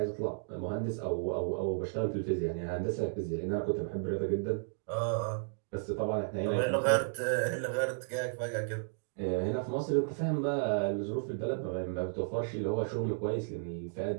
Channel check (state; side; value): silent; left; digital silence